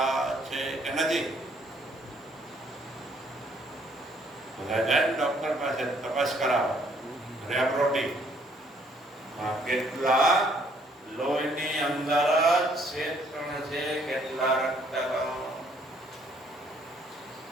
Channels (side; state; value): both; normal; correlation 0.65